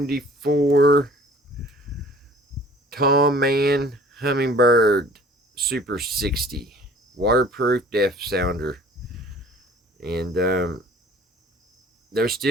Tom Mann Hummingbird Super 60 waterproof depth sounder. And they're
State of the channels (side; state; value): both; normal; correlation 0.50